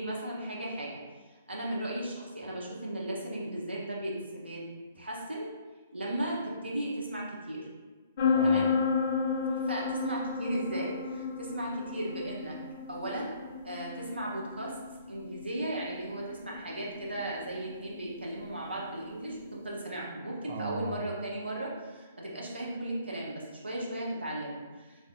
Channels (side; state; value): both; inverted; correlation -0.63